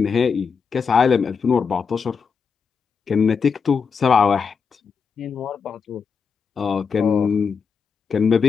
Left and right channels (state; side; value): quieter; right; 5.9 dB